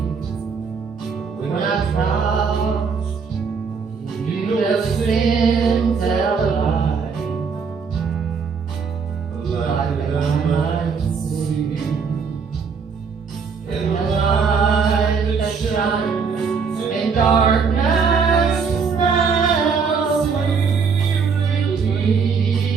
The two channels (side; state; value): left; quieter; 5.7 dB